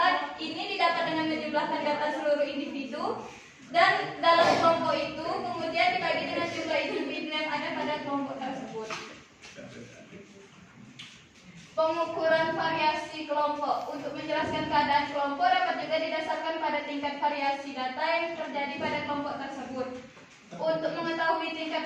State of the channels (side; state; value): both; identical; correlation 1.00